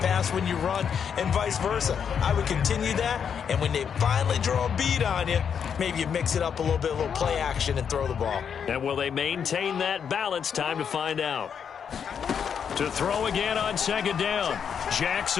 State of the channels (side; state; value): right; quieter; 7.4 dB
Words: when you run and vice versa. I would continue that, and when they finally draw a bead on you, maybe you mix it up a little bit, a little play action, and throw the ball. And will they maintain that balance? Time to find out. To throw again on 2nd down.